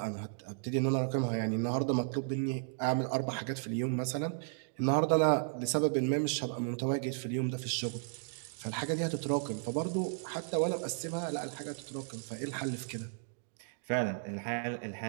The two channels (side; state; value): left; silent; digital silence